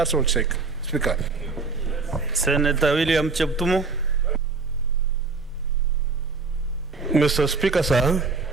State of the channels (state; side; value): quieter; left; 4.2 dB